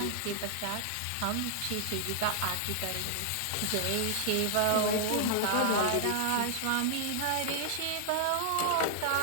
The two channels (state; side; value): different; both; correlation -0.01